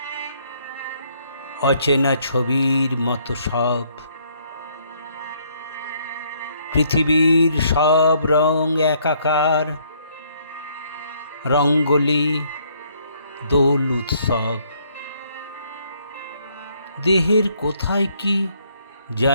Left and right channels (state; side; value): inverted; both; correlation -0.68